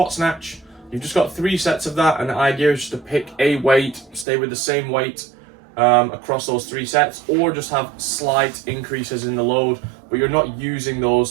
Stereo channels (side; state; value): left; drops out; at 4.2 s